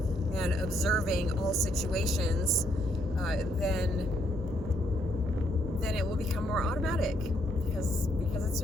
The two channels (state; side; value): normal; both; correlation 0.73